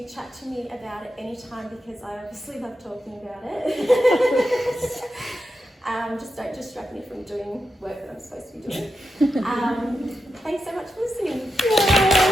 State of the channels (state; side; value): normal; both; correlation 0.88